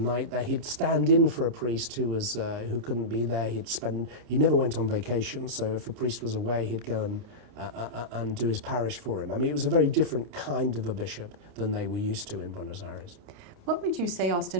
there. He'd stand in for a priest who couldn't be there. He never went on vacation, so if a priest was away, he'd go and and do his parish for him. I mean, it was a very different kind of a bishop than they were used to in Buenos Aires. What would you say,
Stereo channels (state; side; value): late; left; 29 ms